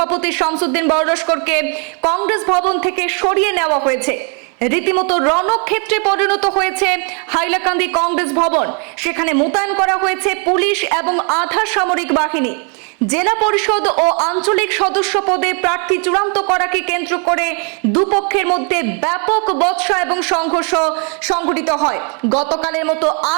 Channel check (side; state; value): left; quieter; 38.7 dB